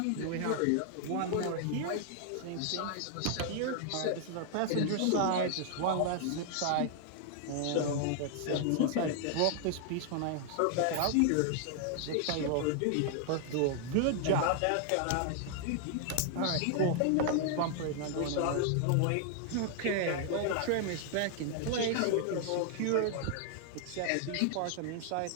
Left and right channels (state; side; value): different; both; correlation 0.00